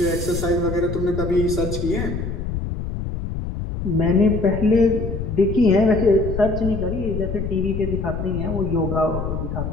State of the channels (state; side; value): noise; left; rumble, 5 dB below the sound